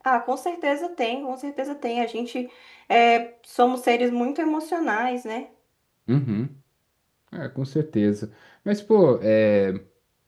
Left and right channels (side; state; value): both; identical; correlation 1.00